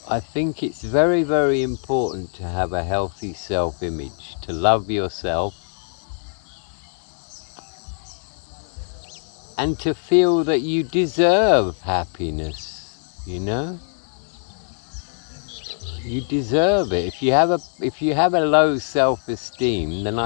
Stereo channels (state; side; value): silent; right; digital silence